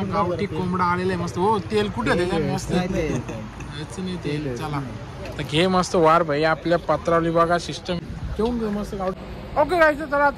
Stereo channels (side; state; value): both; identical; correlation 1.00